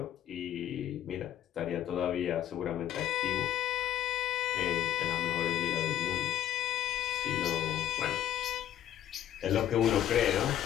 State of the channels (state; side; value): quieter; right; 11.4 dB